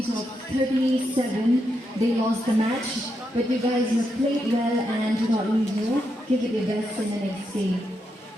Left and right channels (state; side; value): normal; both; correlation 0.83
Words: of 37. They lost the match, but you guys have played well and do not lose your. Give it your best in the next game.